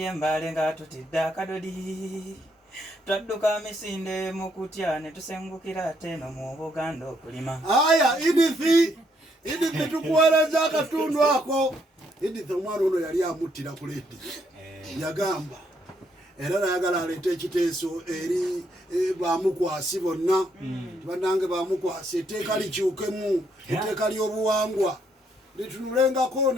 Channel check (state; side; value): normal; both; correlation 0.73